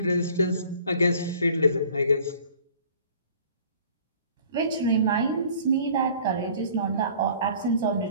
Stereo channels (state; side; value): inverted; both; correlation -0.51